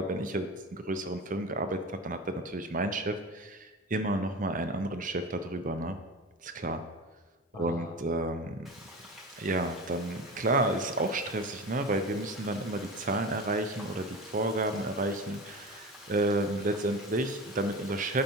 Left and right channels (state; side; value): normal; both; correlation 0.30